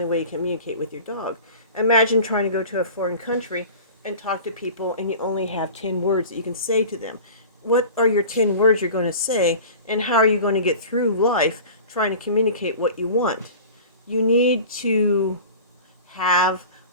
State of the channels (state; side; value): inverted; both; correlation -0.38